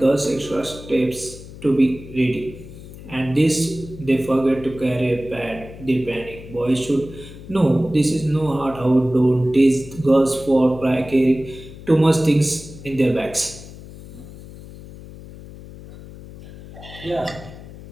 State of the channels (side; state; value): left; noise; hum, 16 dB below the sound